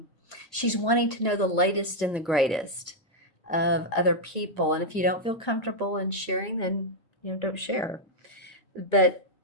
she's wanting to know the latest and the greatest of other people. And if you don't feel comfortable in sharing, then don't share. But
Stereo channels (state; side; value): normal; both; correlation -0.02